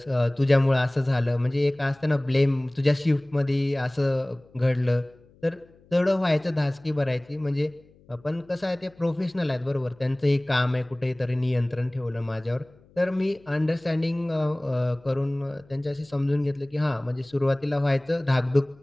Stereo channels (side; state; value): left; noise; hum, 29 dB below the sound